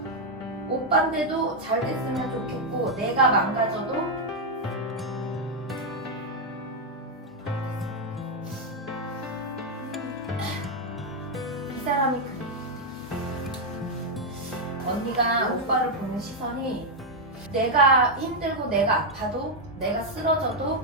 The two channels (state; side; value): normal; both; correlation 0.00